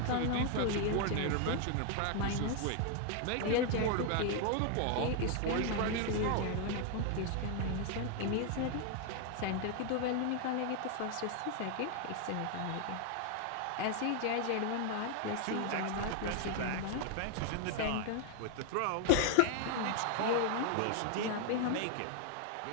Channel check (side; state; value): both; different; correlation 0.00